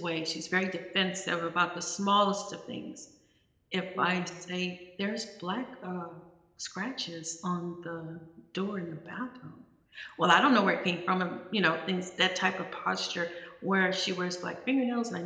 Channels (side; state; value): both; identical; correlation 1.00